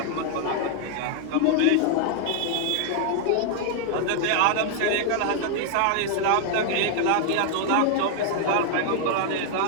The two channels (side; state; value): both; different; correlation 0.00